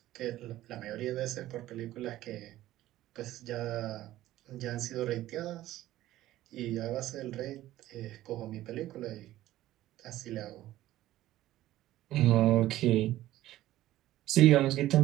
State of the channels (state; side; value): quieter; left; 14.8 dB